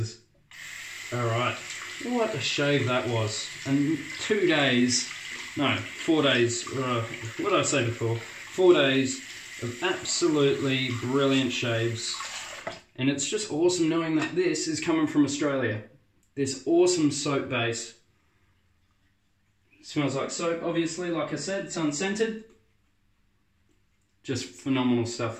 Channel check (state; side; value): identical; both; correlation 1.00